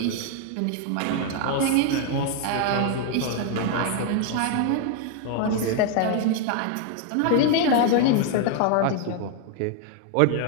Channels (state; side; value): different; both; correlation 0.00